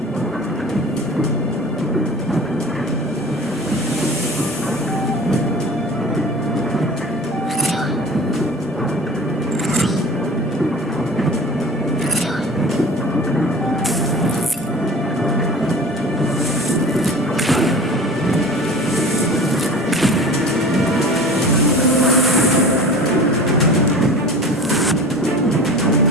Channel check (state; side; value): normal; both; correlation 0.40